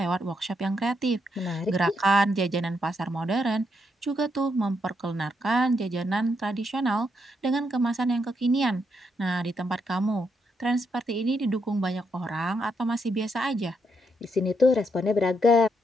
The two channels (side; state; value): both; normal; correlation 0.78